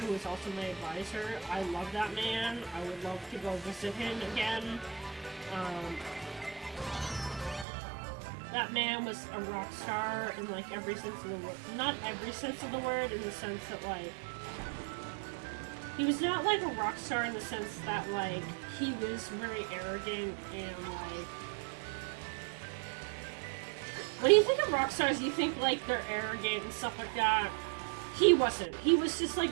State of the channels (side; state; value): left; drops out; at 7.7 s